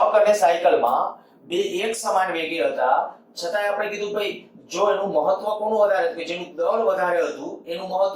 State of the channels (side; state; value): both; identical; correlation 1.00